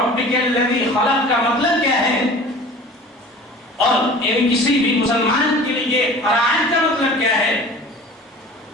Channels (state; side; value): normal; both; correlation 0.42